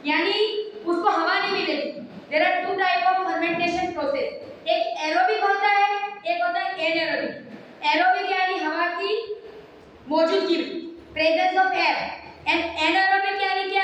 यानी उसको हवा नहीं मिलेगी। There are 2 type of fermentation process, एक एरोबिक होता है, एक होता है एनारोबिक। एरोबिक यानी हवा की मौजूदगी, presence of air, and anaerobic यानी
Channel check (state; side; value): identical; both; correlation 1.00